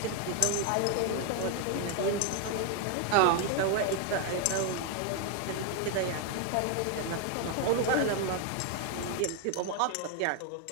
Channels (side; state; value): both; different; correlation 0.01